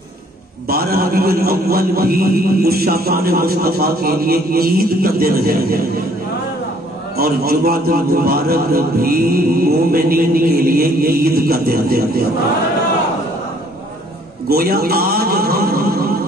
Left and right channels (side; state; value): both; normal; correlation 0.60